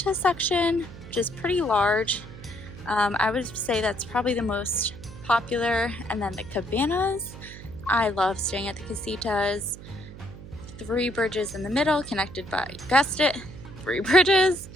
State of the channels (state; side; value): noise; right; hum, 15 dB below the sound